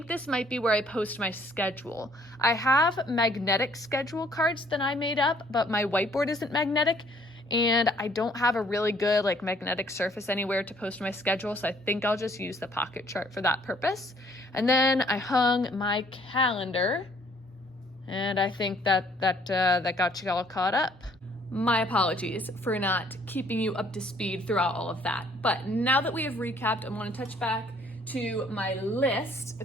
this might be where I post my schedule. I have magnetic schedule cards that I made up, but my whiteboard isn't magnetic, and I don't have a really good like magnetic surface anywhere to post my schedule, so I think I'll just use the pocket chart for that purpose. And then I hung my calendar, and I think that got you all caught up. My apologies for not keeping you up to speed throughout all of that. But now that we have recapped, I want to touch back to my list.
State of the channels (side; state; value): both; normal; correlation 0.61